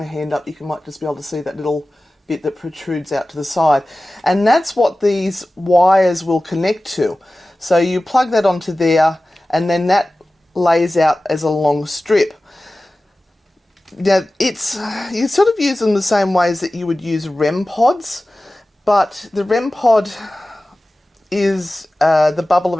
hand up, you might just be able to see that little bit that protrudes out to the side, and that's what these wires will connect to. So you plug that onto there, and then that lays out as a long strip. Now, you sort of use them the same ways that you would use REM pods, but the REM pod is the bubble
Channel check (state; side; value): normal; both; correlation 0.96